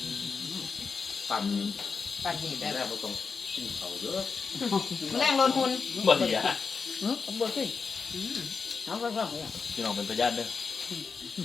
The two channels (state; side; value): quieter; right; 5.2 dB